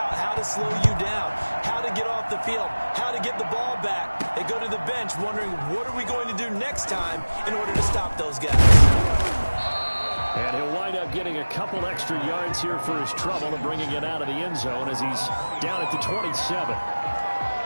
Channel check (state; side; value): inverted; both; correlation -1.00